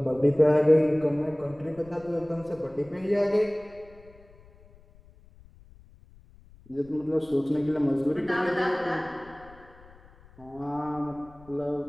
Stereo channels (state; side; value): noise; left; rumble, 24 dB below the sound